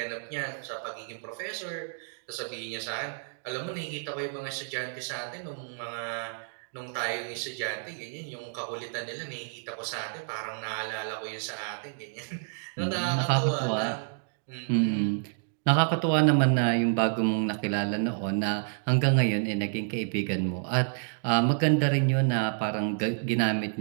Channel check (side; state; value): left; silent; digital silence